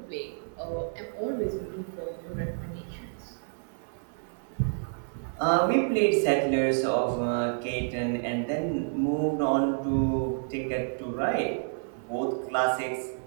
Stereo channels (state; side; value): silent; left; digital silence